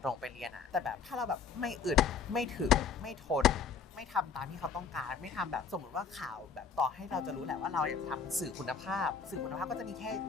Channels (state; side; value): quieter; right; 5.9 dB